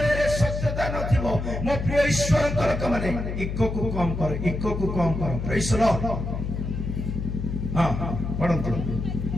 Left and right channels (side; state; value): left; noise; hum, 4 dB below the sound